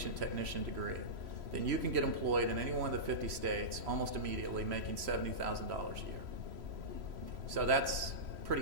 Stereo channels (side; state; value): left; late; 3.0 ms